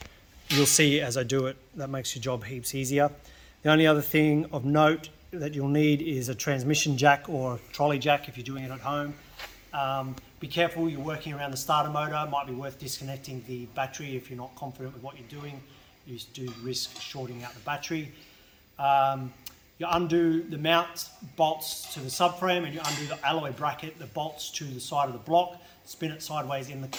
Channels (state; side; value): identical; both; correlation 1.00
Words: you'll see as I do it, that makes your job heaps easier. The only other thing of note that you'll need is a transmission jack or a trolley jack if you're doing it at home. Be careful, you're working around the starter motor. It might be worth disconnecting the battery if you're not confident with what you're doing. You do risk shorting out the battery. You undo the mount bolts to the subframe and you undo the alloy bracket, the bolts to the side of the block, spin it sideways in the